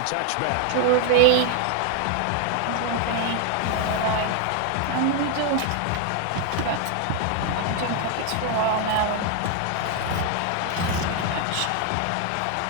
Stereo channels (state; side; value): different; both; correlation 0.00